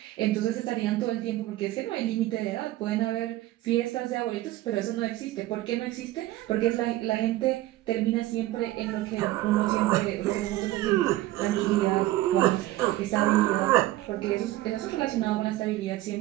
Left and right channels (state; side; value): quieter; left; 16.2 dB